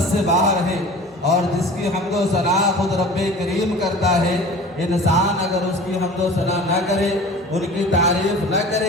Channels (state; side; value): normal; both; correlation 0.41